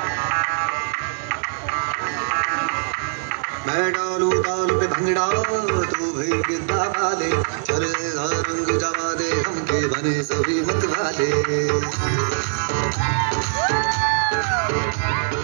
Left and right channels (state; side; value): silent; left; digital silence